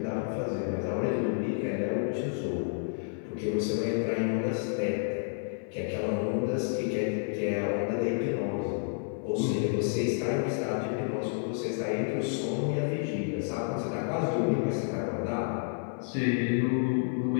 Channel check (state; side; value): silent; right; 58 dB below the other